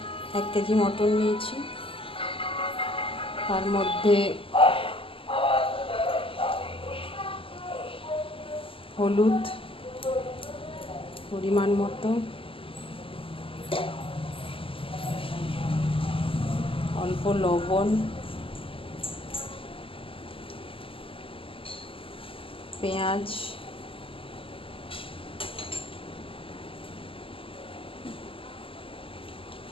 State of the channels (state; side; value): late; right; 0.26 ms